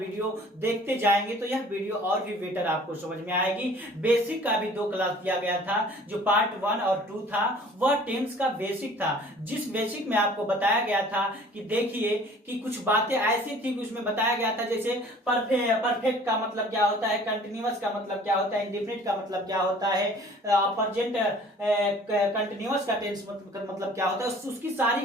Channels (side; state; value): both; normal; correlation 0.50